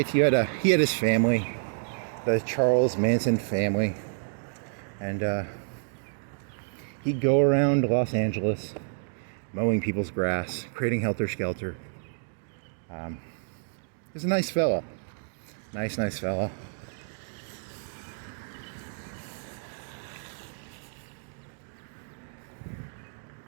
He had his family. The Charles Manson family. And he'd go around Los Angeles mowing people's grass, creating helter-skelter. He's a nice fella. Nice fella.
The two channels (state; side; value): silent; left; digital silence